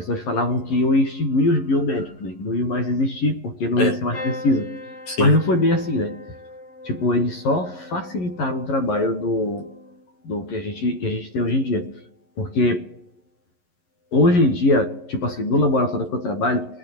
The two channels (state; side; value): late; right; 11 ms